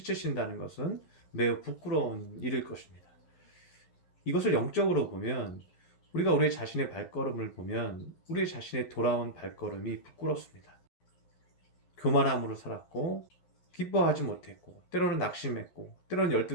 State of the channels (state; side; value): late; right; 11 ms